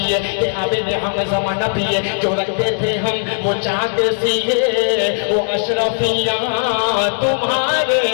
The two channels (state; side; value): silent; right; digital silence